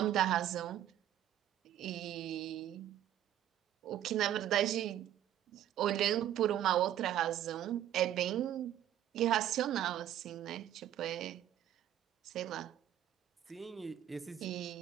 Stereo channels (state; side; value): quieter; left; 11.7 dB